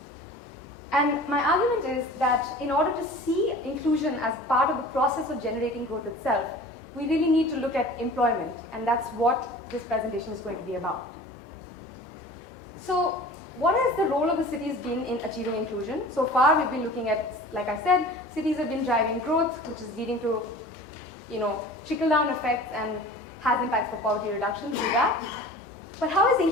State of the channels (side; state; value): both; normal; correlation 0.41